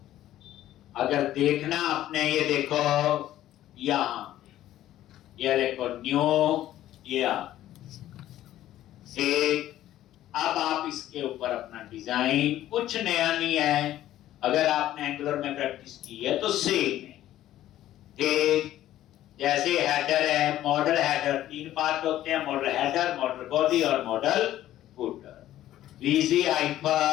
अगर देखना आपने, ये देखो यहाँ, ये देखो न्यू, ये एक अब आप इसके ऊपर अपना डिजाइन, कुछ नया नहीं है, अगर आपने एंगुलर में प्रैक्टिस की है तो सेम है। ठीक जैसे हेडर है, मॉडल हेडर, 3 पार्ट होते हैं, मॉडल हेडर, मॉडल बॉडी और modal footer. VG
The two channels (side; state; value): right; quieter; 13.3 dB